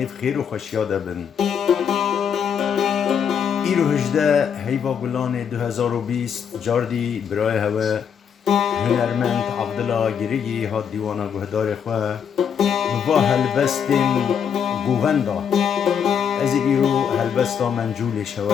خیر و خوشیا دبن ایرو هجده هیوا گلان 2020 جاردی برای هوا هنرمند عبدالله گریگی هاد دیوانا گهدار خواه و هلبستین گووندا از ایرو هلبستا منجول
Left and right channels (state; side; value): quieter; right; 7.7 dB